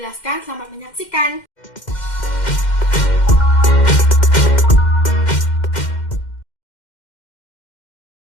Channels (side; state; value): right; late; 2.1 ms